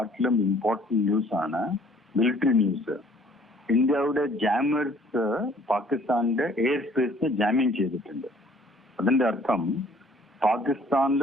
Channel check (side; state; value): both; normal; correlation 0.56